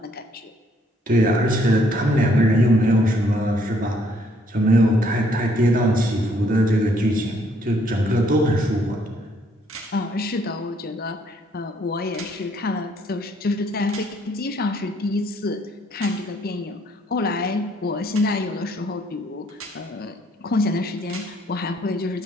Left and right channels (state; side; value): normal; both; correlation 0.66